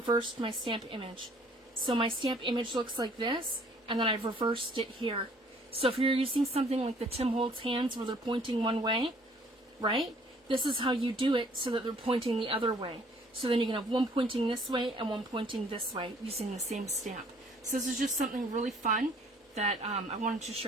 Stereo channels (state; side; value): normal; both; correlation 0.58